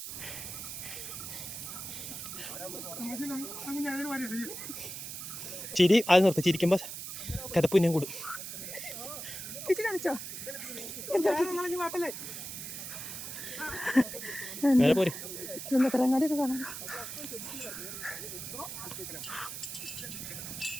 ചിരി അത് നിർത്തി. ചിരിക്കുമ്പോ കഥപ്പുന്നം കൂടും. കാണിച്ചോ നേരെ പോര്. ചുമത്തലങ്ങാടിയൊക്കെ കാണാം.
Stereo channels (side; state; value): right; noise; hiss, 8 dB below the sound